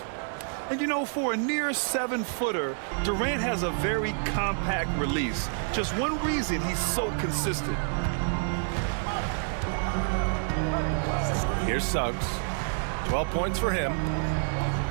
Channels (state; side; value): silent; left; 59 dB below the other